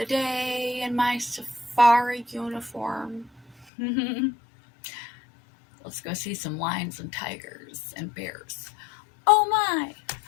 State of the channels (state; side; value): drops out; right; at 3.7 s